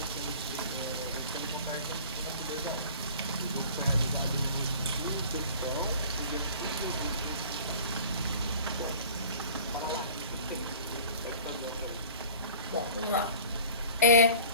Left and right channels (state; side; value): inverted; both; correlation -0.45